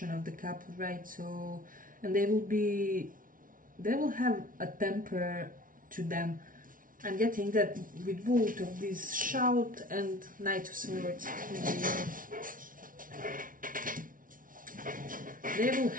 of the couple, right? So, and they will have a temper to them. I'm getting that with both of these, shout and Knight of Swords. They will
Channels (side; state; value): left; late; 0.39 ms